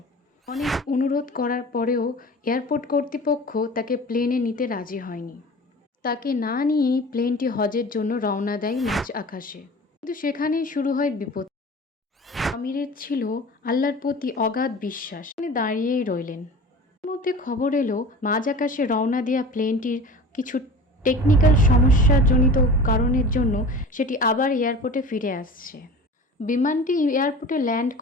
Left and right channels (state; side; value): normal; both; correlation 0.38